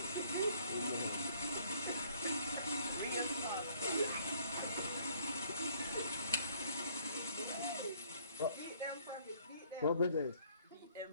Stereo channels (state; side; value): inverted; both; correlation -0.61